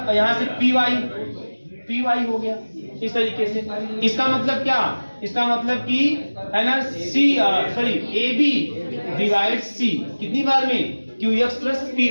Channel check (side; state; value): both; inverted; correlation -1.00